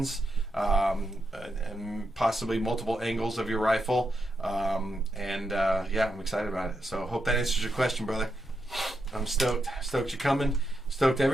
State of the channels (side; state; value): both; normal; correlation 0.84